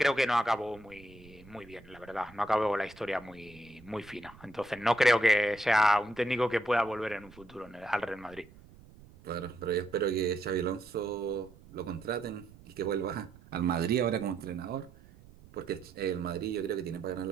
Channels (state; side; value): noise; right; rumble, 22 dB below the sound